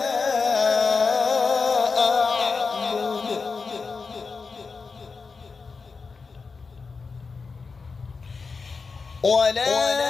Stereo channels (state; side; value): quieter; right; 4.7 dB